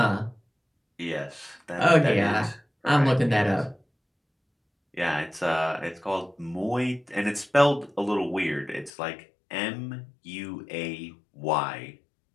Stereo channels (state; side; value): drops out; right; at 8.9 s